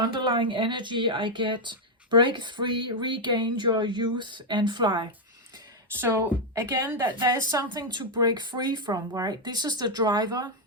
energy, I get break free, regain your youth and fly. So again, that there is something to break free from, right? This is the driver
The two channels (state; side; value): normal; both; correlation 0.00